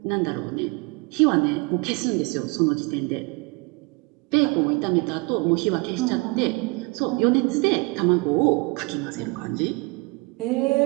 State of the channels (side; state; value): left; quieter; 27.3 dB